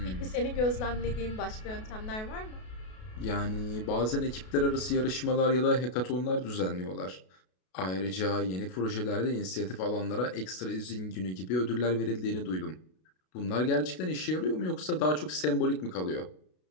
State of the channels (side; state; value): right; late; 32 ms